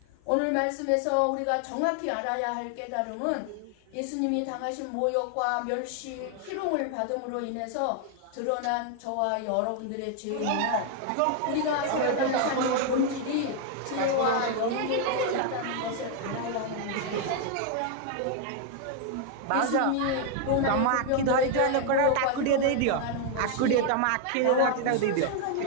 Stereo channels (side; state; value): both; different; correlation 0.00